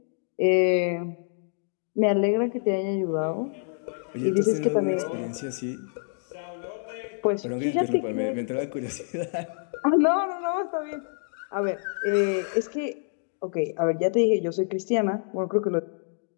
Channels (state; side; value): silent; right; digital silence